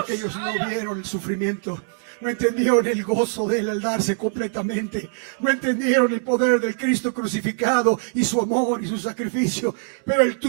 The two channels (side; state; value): left; silent; digital silence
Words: ellos no vieron el sufrimiento, no entendieron el gozo de Él al darse completamente, no entendieron el poder del Cristo crucificado y su amor y su sacrificio, pero Él